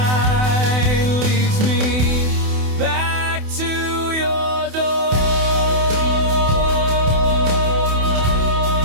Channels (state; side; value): late; left; 28 ms